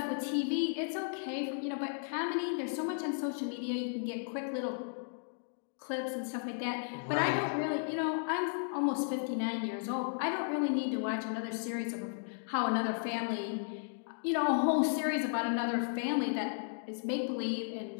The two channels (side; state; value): right; silent; digital silence